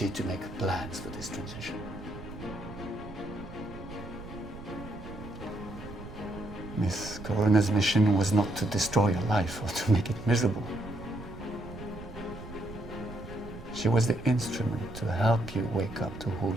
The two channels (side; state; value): right; noise; rumble, 13 dB below the sound